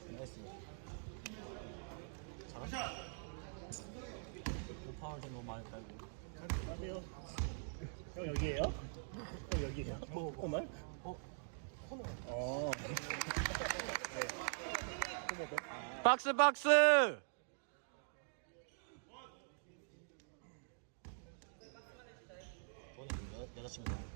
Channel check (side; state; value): left; silent; digital silence